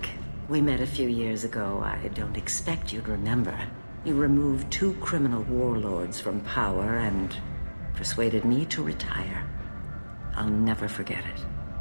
We met a few years ago. I don't expect you'd remember. You removed 2 criminal warlords from power and persuaded me to retire. I'll never forget it.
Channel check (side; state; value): both; inverted; correlation -1.00